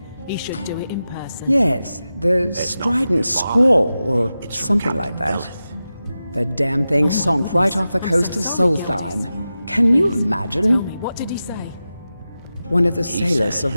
Yes, the strident scrawl, or something like that. The damn thing sunk right off the coast of SOLSTHEIM. Can you imagine? What did he say? One of the sailors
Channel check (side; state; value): both; inverted; correlation -0.93